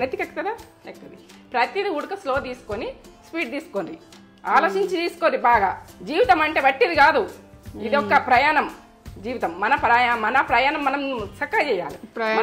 నెత్తికెక్కుతుందా ఎక్కుతుంది ప్రతిదీ ఉడక స్లో తీసుకొని స్పీడ్ తీసుకోండి ఆలోచించి తీసుకోండి బాగా జీవితం అంటే బట్టిది కాదు ఇది ఒక ప్రయాణం జీవితం మన ప్రయాణం మనం చక్కగా చేయాలి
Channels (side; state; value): both; identical; correlation 1.00